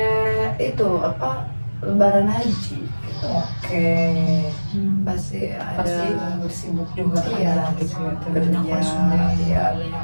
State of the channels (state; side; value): inverted; both; correlation -1.00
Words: itu apa? Lebaran haji. Oke, Pasti ada pasti bersibuk juga kan iya, ya, gitu ya. Banyak kerja, konsumen. iya banyak